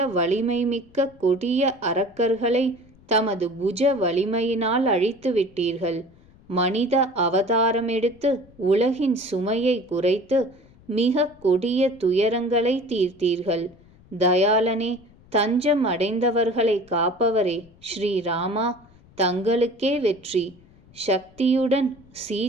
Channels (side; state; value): left; noise; rumble, 27 dB below the sound